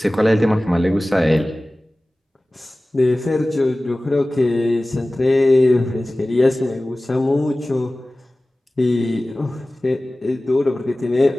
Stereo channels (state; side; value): normal; both; correlation 0.97